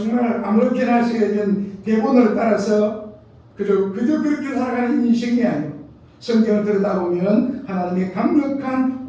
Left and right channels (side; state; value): both; identical; correlation 1.00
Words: 아무렇게나 쓰여진 대본을 따라서 그저 그렇게 살아가는 인생이 아니고 성경을 들여다보면 하나님의 강력한